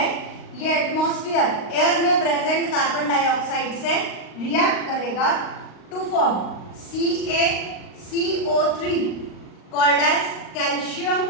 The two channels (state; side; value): late; right; 38 ms